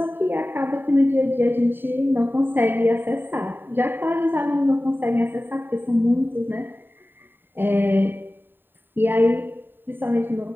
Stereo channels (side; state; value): left; late; 0.095 ms